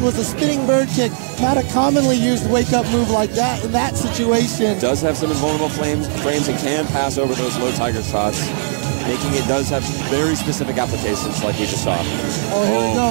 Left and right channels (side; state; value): left; silent; digital silence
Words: was a spinning bird kick. Not a commonly used wake-up move like that in that situation. Does have some invulnerable frames and can pass over those low tiger shots, making it does have very specific applications like we just saw. Oh, here we